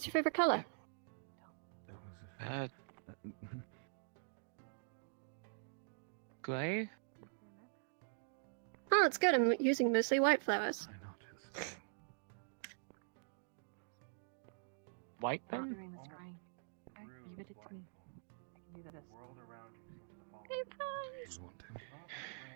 your favorite color? That was a Gray? Oh, it's good. I'm using mostly white flowers. White then? Leave it to me. I can do this.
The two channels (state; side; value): silent; left; digital silence